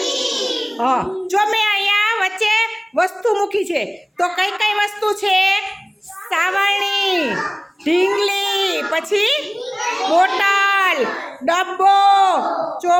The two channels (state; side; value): identical; both; correlation 1.00